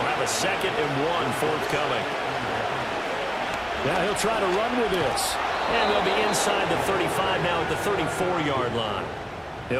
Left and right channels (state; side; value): identical; both; correlation 1.00